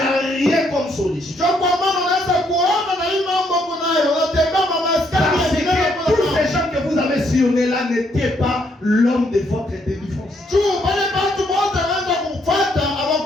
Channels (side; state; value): both; normal; correlation 0.72